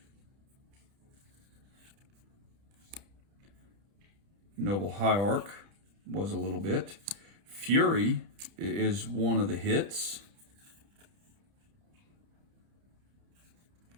Noble Hierarch was a little bit. Fury is one of the hits.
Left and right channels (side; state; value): left; late; 30 ms